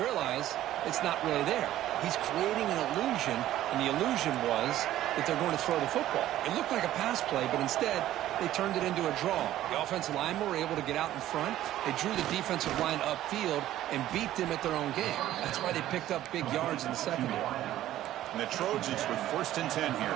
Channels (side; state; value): left; quieter; 13.5 dB